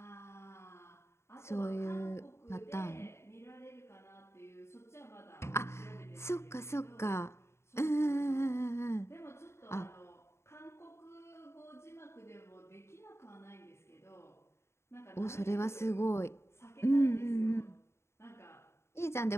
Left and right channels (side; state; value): right; late; 0.13 ms